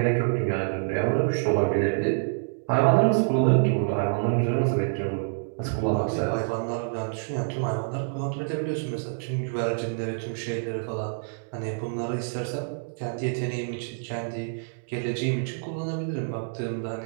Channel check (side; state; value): left; silent; digital silence